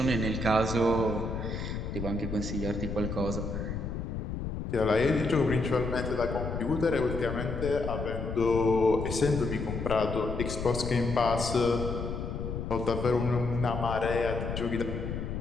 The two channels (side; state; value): left; noise; rumble, 4 dB below the sound